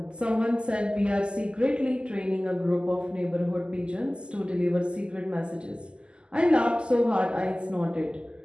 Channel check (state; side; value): late; left; 0.049 ms